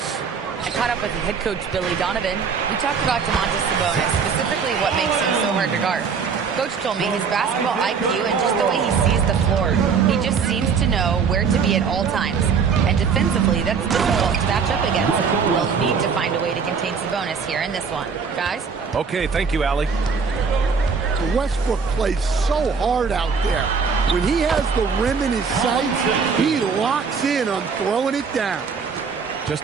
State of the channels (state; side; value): quieter; left; 5.8 dB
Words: I caught up with head coach Billy Donovan. We talked about Domantas Sabonis, specifically what makes him so hard to guard. Coach told me his basketball IQ and just the way he sees the floor. He just seems to know where to be at all times. And defensively, that's difficult to match up against. We'll need to find a way to contain Sabonis here in this one. Guys? Okay, thank you, Allie. Westbrook plays so hard out there. When he has the rim in his sights, he locks in on throwing it down.